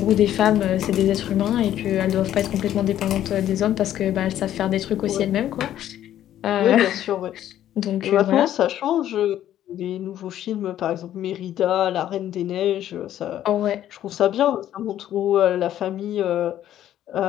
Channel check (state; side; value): quieter; right; 11.8 dB